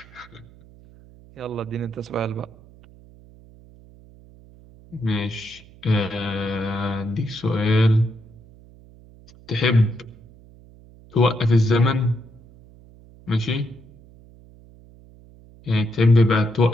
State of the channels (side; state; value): right; noise; hum, 24 dB below the sound